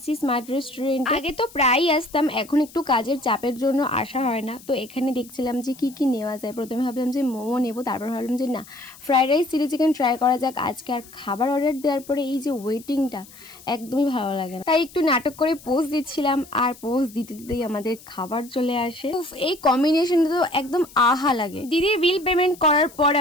স্মার্ট রেস্টুরেন্ট। আগে তো প্রায়ই আসতাম, এখন একটু কাজের চাপের জন্য আসা হয় না। তো এখানে দেখছিলাম যে কি কি নেওয়া যায়। প্রথমে ভাবলাম যে মোমো নেবো, তারপর ভাবলাম যে না, fried rice chilli chicken try করা যাক আজকে। আর খাবার অর্ডার দেওয়ার পরে এই যে ওয়েটিংটা একদমই ভালো লাগে না, তাই একটু নাটক করে পোজ দিচ্ছিলাম। আর পোজ দিতে দিতেই আমাদের খাবার চলে আসে। উফ, এই কম্বিনেশনটা তো একদম আহা লাগে। দিদির বিল পেমেন্ট করার পর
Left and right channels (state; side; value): noise; left; hiss, 21 dB below the sound